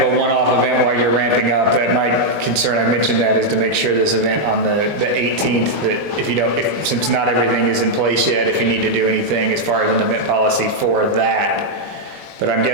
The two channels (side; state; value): left; late; 21 ms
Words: a one-off event while you're ramping up, that my concern, I mentioned that, is to make sure this event on the 18th, that if you don't, since not everything is in place yet, if you need to do anything as far as an event policy for that. But I'm